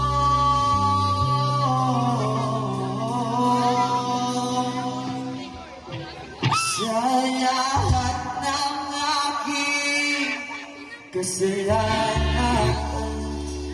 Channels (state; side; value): identical; both; correlation 1.00